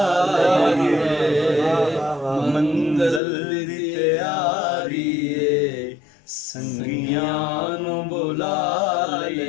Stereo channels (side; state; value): right; drops out; at 3.2 s